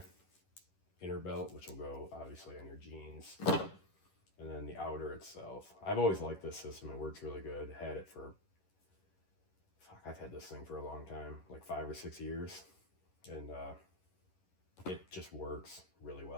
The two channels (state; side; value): late; right; 11 ms